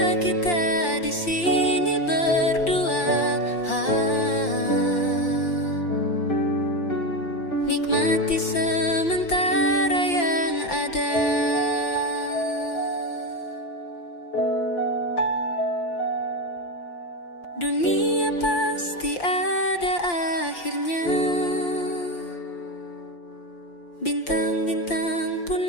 kita di sini berdua, nikmati sementara yang ada. Dunia pasti ada akhirnya, bintang-bintang pun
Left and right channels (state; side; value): late; right; 5.8 ms